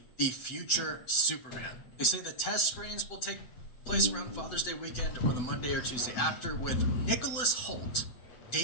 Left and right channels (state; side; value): late; right; 7.7 ms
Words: the future Superman. They say the test screens will take place around Father's Day weekend or the Monday or Tuesday after, with Nicholas Hoult,